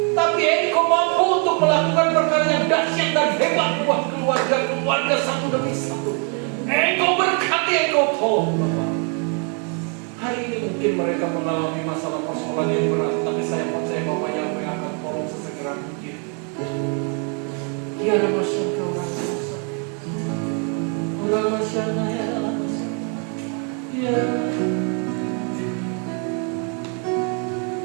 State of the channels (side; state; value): left; quieter; 38.5 dB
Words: Tapi Engkau mampu untuk melakukan perkara yang dahsyat dan hebat buat keluarga satu demi satu. Engkau berkati, Engkau tolong Bapak. Hari ini mungkin mereka mengalami masalah persoalan yang berat, tapi saya percaya Bapak yang akan tolong sesegera mungkin. Ya